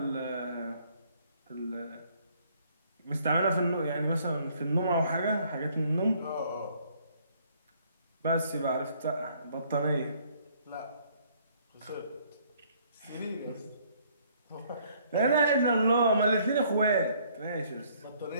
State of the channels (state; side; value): inverted; both; correlation -0.63